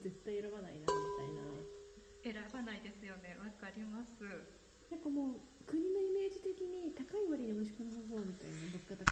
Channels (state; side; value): identical; both; correlation 1.00